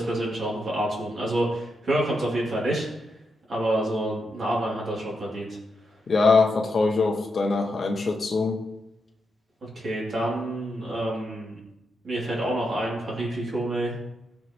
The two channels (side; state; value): both; normal; correlation 0.84